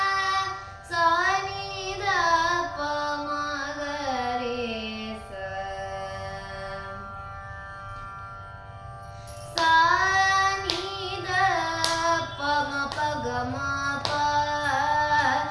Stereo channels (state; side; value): identical; both; correlation 1.00